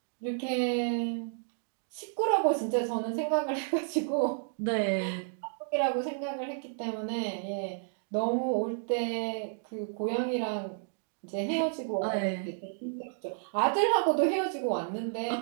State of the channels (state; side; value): silent; left; digital silence